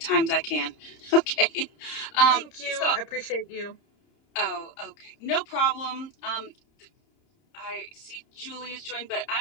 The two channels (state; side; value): late; right; 30 ms